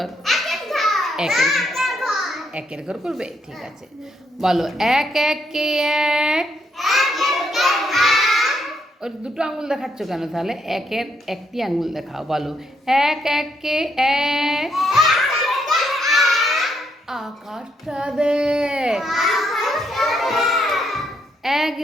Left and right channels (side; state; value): both; normal; correlation 0.76